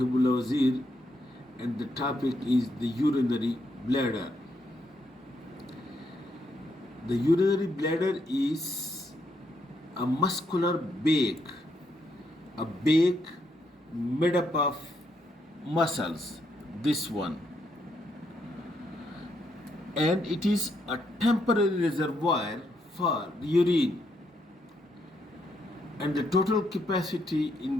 Wazir, and the topic is the urinary bladder. The urinary bladder is a muscular bag, a bag made up of muscles. This one, and it is a temporary reservoir for urine, and the total capacity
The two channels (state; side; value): normal; both; correlation 0.77